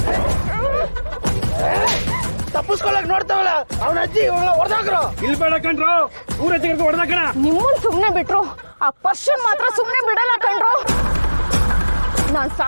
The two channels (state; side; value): inverted; both; correlation -1.00